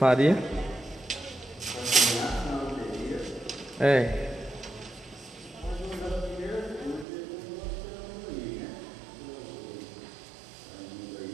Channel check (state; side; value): drops out; left; at 7.1 s